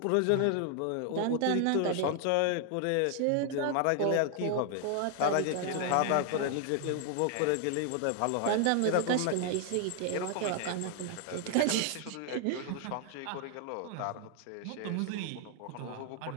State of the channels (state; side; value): different; both; correlation 0.00